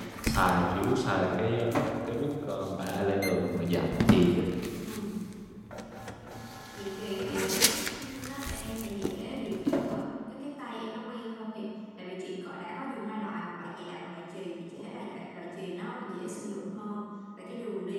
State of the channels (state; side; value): identical; both; correlation 1.00